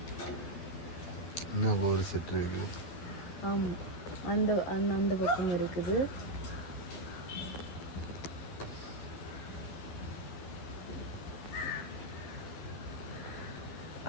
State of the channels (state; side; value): late; right; 12 ms